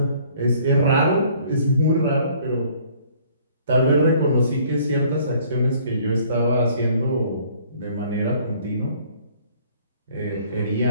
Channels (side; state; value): both; inverted; correlation -0.58